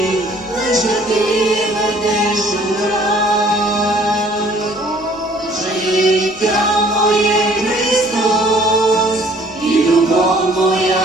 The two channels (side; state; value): right; noise; rumble, 28 dB below the sound